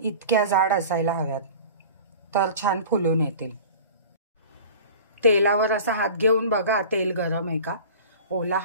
इतक्या जाड असायला हव्यात, तर छान फुलून येतील. तेलावर असा हात घेऊन बघा तेल गरम आहे का. ओला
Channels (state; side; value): inverted; both; correlation -0.40